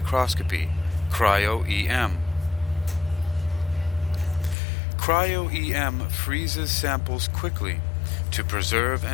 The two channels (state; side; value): drops out; right; at 4.5 s